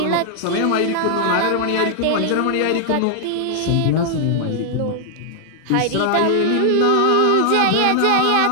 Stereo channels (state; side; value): different; both; correlation 0.00